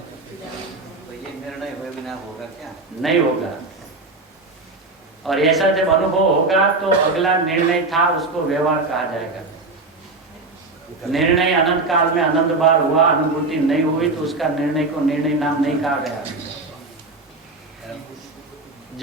तो ये निर्णय हुए बिना होगा क्या? नहीं होगा। और ऐसा जब अनुभव होगा तो अगला निर्णय था उसको व्यवहार कहा जाएगा। निर्णय अनंत काल में अनंत बार हुआ, अनुभूति नहीं हुई तो उसका निर्णय को निर्णय नाम नहीं कहा गया।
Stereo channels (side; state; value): left; quieter; 3.3 dB